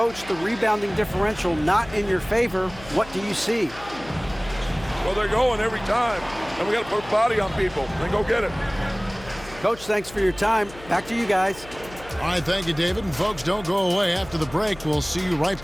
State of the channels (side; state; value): left; noise; hum, 18 dB below the sound